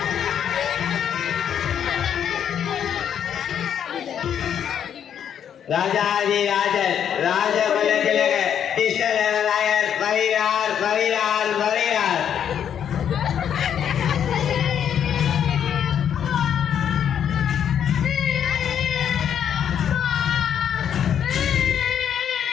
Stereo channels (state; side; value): quieter; right; 8.9 dB